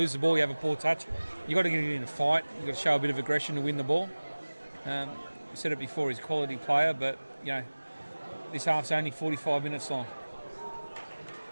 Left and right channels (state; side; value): inverted; both; correlation -1.00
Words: the ball, you have a poor touch. You got to get in a fight. You got to show a bit of aggression to win the ball. I said it before, he's a quality player, but you know, this half's only 45 minutes long.